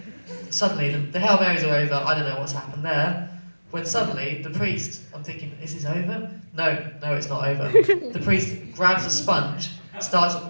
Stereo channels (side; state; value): both; inverted; correlation -1.00